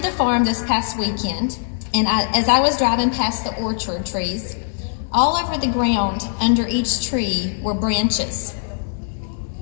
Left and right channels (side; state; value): right; silent; digital silence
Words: the farm this past weekend, and as I was driving past the orchard trees, all over the ground under each tree were branches.